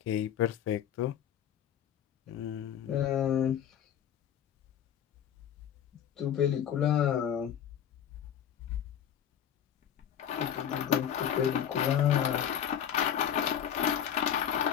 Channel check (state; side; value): quieter; right; 9.4 dB